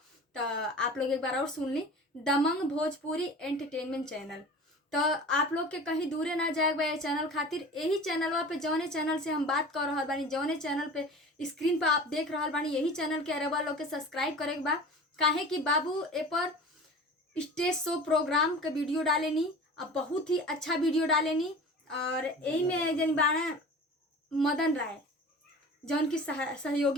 तो आप लोग एक बार और सुन ली, दमंग भोजपुरी एंटरटेनमेंट चैनल। तो आप लोग के कहीं दूरे ना जाए बा चैनल खातिर। यही चैनलवा पे जौने चैनल से हम बात कर रहा बानी, जौने चैनल पे स्क्रीन पे आप देख रहा बानी, यही चैनल के अरबा लोग के सब्सक्राइब करे के बा। काहे कि बाबू ए पर स्टेज शो प्रोग्राम के वीडियो डालेनी, अब बहुत ही अच्छा वीडियो डालेनी। और यही में जन बाना मदन राय जौन की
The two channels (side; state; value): both; normal; correlation 0.38